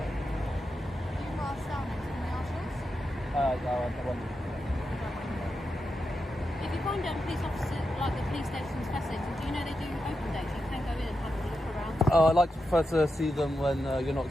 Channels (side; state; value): both; normal; correlation 0.88